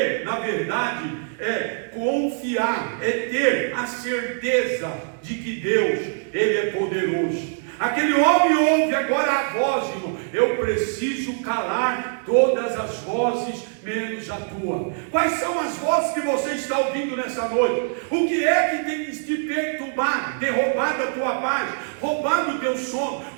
na verdade, é confiar, é ter a certeza de que Deus, Ele é poderoso. Aquele homem ouve agora a voz, irmão: eu preciso calar todas as vozes, menos a tua. Quais são as vozes que você está ouvindo nessa noite? O que é que tem te perturbado, ter roubado a tua paz, roubado o teu sono,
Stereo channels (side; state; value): left; silent; 63 dB below the other